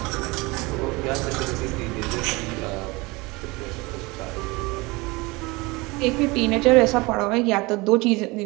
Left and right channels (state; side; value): quieter; left; 24.2 dB